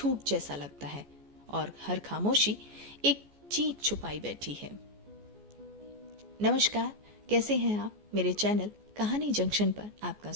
जैसा लगता है और हर खामोशी एक चीख छुपाई बैठी है। नमस्कार, कैसे हैं आप? मेरे चैनल कहानी जंक्शन पर आपका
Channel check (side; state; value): left; late; 14 ms